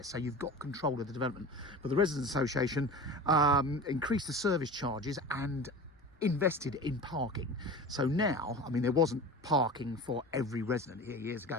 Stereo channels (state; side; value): normal; both; correlation 0.34